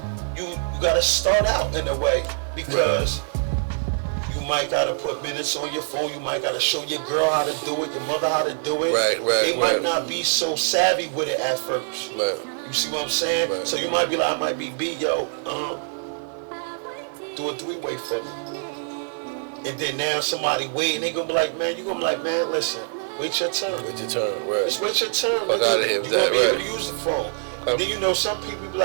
you gotta start out in a way because you might gotta put minutes on your phone. You might gotta show your girl how to do it, your mother how to do it. Right. They might not be so savvy with it at first. Right. You see what I'm saying? Right. So you might be like, I might be B, yo, do a 3-way for me. And then now somebody wait, and they gonna be like, man, you gonna be like, man, listen, wait your turn. Wait your turn, right. Just wait your turn, Fuck outta nigga. here You with gonna that, be right. able to use the phone. And then you know some people be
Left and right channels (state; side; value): silent; left; 56 dB below the other